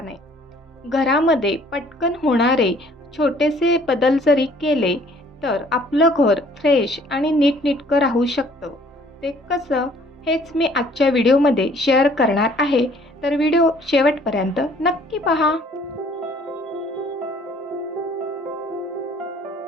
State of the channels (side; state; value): both; normal; correlation 0.57